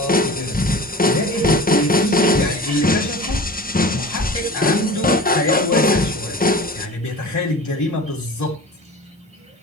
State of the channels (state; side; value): normal; both; correlation 0.37